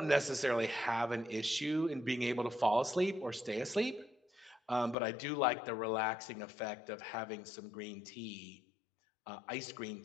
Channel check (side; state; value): right; drops out; at 5.0 s